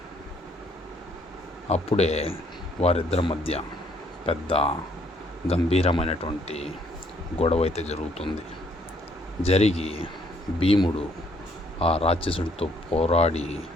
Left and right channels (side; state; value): both; normal; correlation 0.66